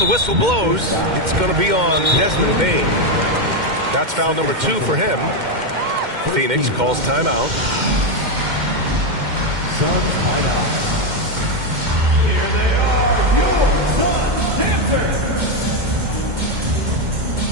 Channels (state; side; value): late; left; 2.1 ms